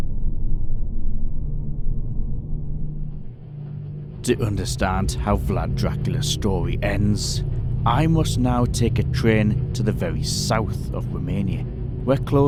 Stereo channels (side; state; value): both; identical; correlation 1.00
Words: To understand how Vlad Dracula's story ends, I must now take a train to the very south of Romania. We're